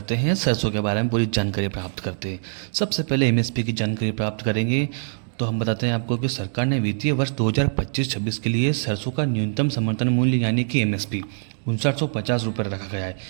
हैं सरसों के बारे में पूरी जानकारी प्राप्त करते हैं। सबसे पहले एमएसपी की जानकारी प्राप्त करेंगे तो हम बताते हैं आपको कि सरकार ने वित्तीय वर्ष 2025-26 के लिए सरसों का न्यूनतम समर्थन मूल्य यानी कि एमएसपी 5950 रुपये रखा गया है।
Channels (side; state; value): left; silent; digital silence